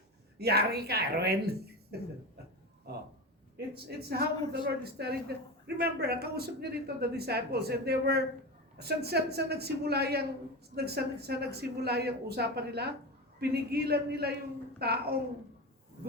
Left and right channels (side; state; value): both; normal; correlation 0.22